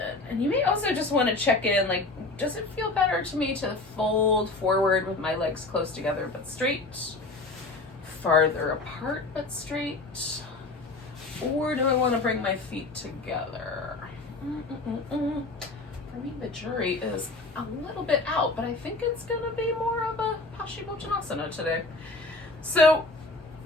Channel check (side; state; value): right; quieter; 3.2 dB